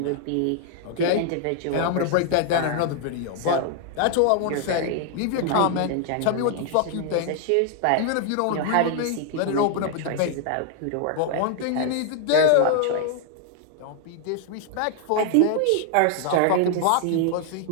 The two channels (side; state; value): both; different; correlation 0.00